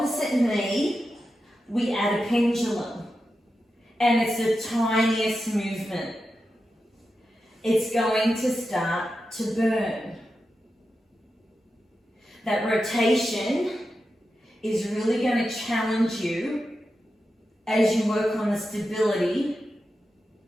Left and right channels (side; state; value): both; normal; correlation 0.90